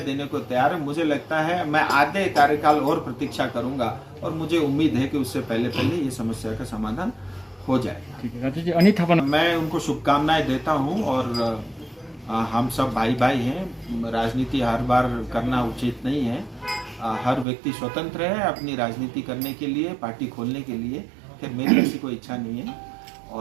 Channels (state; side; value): drops out; left; at 17.4 s